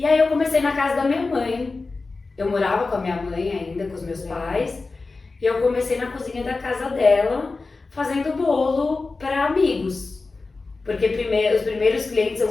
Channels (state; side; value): quieter; right; 3.8 dB